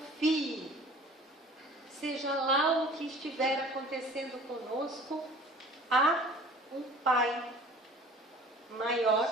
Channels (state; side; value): normal; both; correlation 0.46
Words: Seja lá o que estiver acontecendo conosco, há um Pai maior